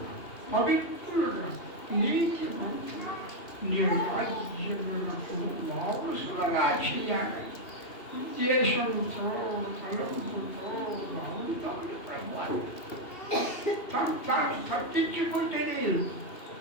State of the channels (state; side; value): late; right; 2.7 ms